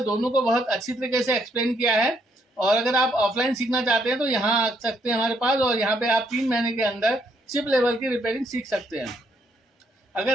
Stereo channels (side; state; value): both; normal; correlation 0.72